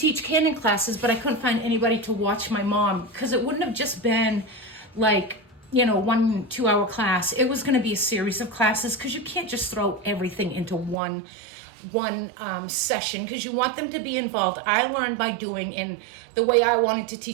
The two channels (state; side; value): drops out; left; at 11.0 s